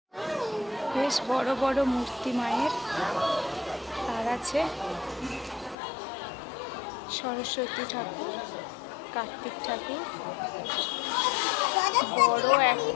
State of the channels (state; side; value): drops out; right; at 5.8 s